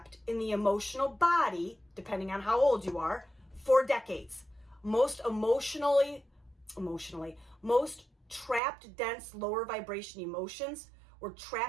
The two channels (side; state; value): left; drops out; at 8.6 s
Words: in the emotional body, depending on how old you are, for decades. Most trapped, dense, lower vibration emotions were